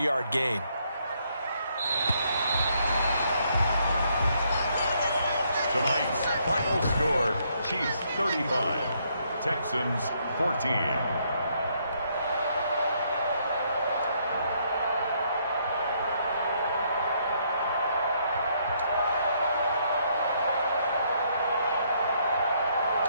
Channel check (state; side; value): inverted; both; correlation -0.71